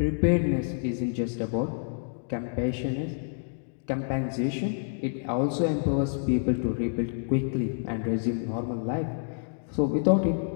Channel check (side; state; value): right; silent; digital silence